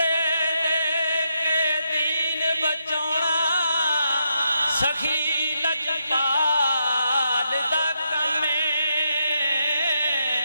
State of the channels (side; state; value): both; inverted; correlation -0.81